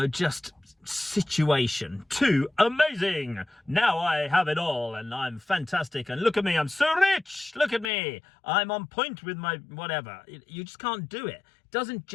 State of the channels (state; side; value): drops out; right; at 7.9 s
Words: just situation, to amazing. Now I have it all and I'm fantastic and look at me, I'm so rich. Look at me. I'm on point with my whatever. You just can't do it. It doesn't